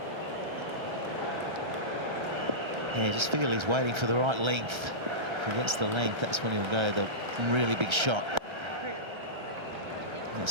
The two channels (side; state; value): left; late; 1.3 ms